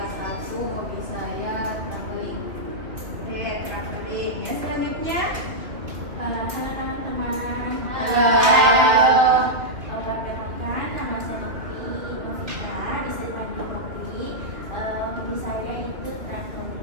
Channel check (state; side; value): late; left; 2.8 ms